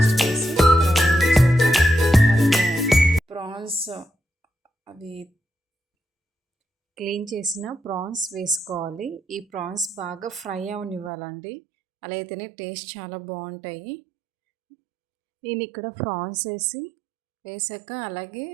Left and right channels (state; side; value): drops out; left; at 11.1 s